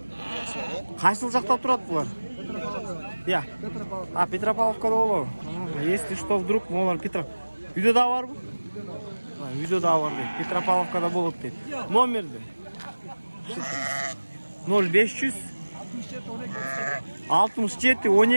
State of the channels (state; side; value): inverted; both; correlation -1.00